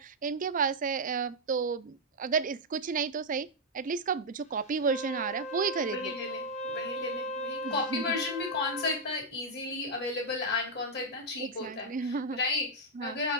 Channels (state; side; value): normal; both; correlation -0.03